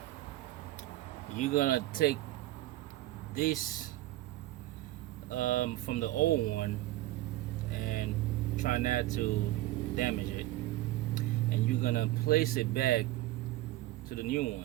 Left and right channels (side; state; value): left; quieter; 16.7 dB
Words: You're gonna take this from the old one and try not to damage it, and you're gonna place it back to the new